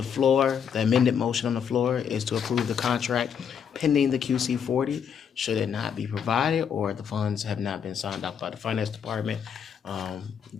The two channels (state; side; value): quieter; right; 7.6 dB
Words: floor, the amended motion on the floor is to approve the contract pending the QC40. Should it not be provided or the funds have not been signed off by the finance department,